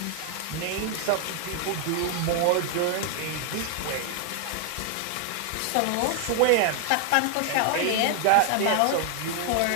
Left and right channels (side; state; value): both; different; correlation 0.00